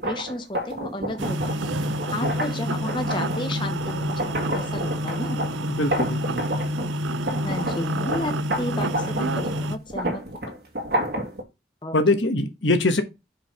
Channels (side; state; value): both; normal; correlation 0.33